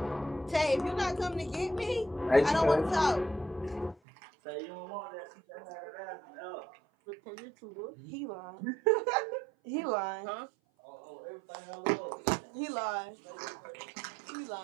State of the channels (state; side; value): drops out; left; at 4.0 s